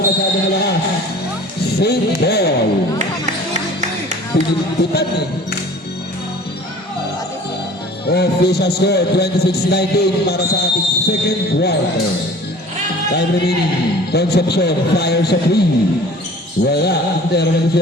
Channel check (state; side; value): normal; both; correlation 0.46